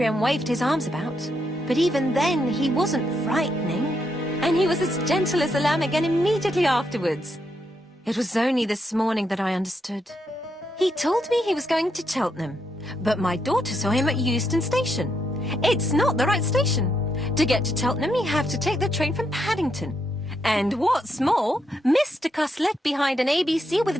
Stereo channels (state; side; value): normal; both; correlation 0.79